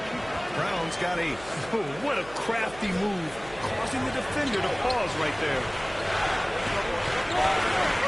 Brown's got 8. Oh, what a crafty move, causing the defender to pause right there.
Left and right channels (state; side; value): noise; right; hum, 19 dB below the sound